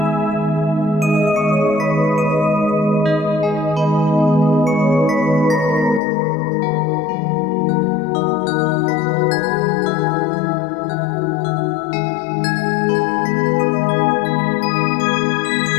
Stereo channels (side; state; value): right; drops out; at 6.0 s